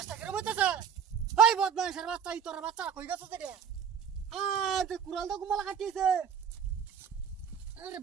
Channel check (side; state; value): left; quieter; 7.7 dB